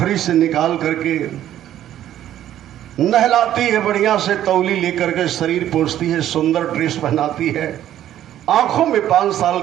से निकाल करके नहलाती है, बढ़िया से तौली लेकर के शरीर पोंछती है, सुंदर ड्रेस पहनाती है, आंखों में 5 साल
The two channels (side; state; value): left; quieter; 11.9 dB